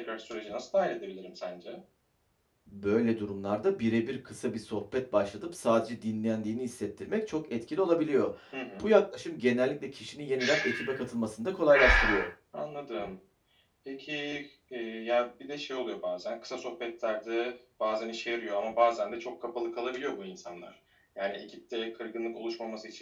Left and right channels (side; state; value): both; identical; correlation 1.00